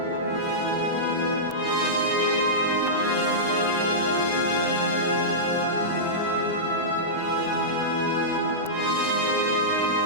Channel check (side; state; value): both; normal; correlation -0.14